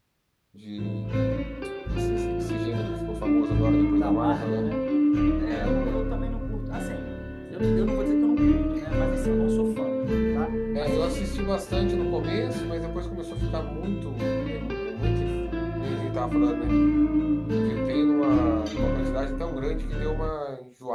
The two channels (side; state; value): both; identical; correlation 1.00